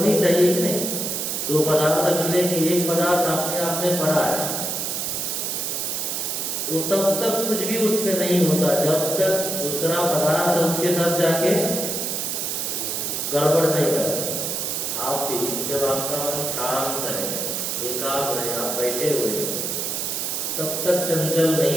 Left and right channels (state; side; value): noise; right; hiss, 2 dB below the sound